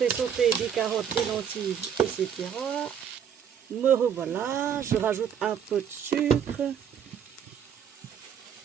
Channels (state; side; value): quieter; left; 8.3 dB